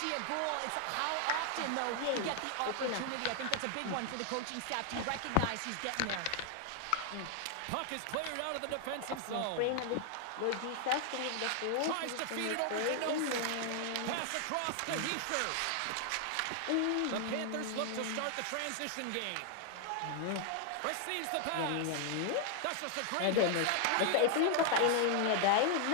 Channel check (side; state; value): both; different; correlation 0.00